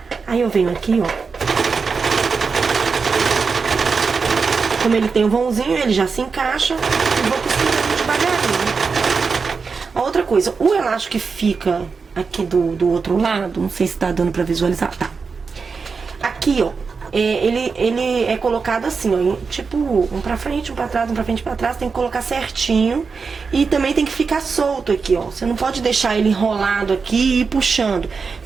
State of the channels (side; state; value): left; quieter; 5.1 dB